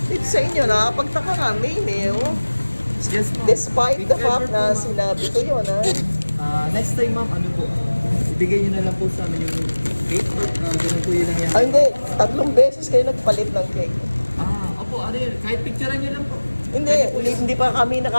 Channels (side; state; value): both; inverted; correlation -1.00